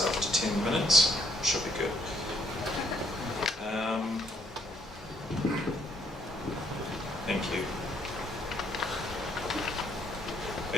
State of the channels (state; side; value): normal; both; correlation 0.68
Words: to 10 minutes, it should be good. Thank you. I